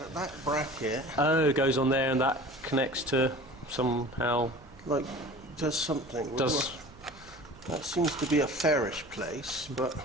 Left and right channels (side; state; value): right; noise; hum, 23 dB below the sound